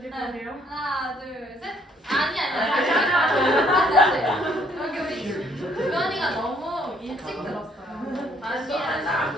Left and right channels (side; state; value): both; normal; correlation 0.65